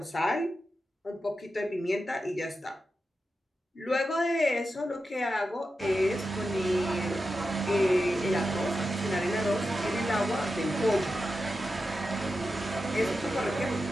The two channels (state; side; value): normal; both; correlation 0.90